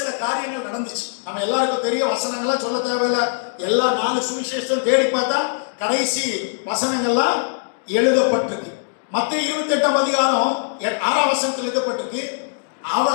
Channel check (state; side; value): silent; right; digital silence